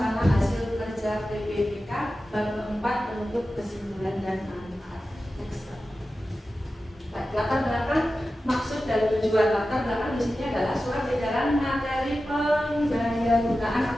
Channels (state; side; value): normal; both; correlation 0.94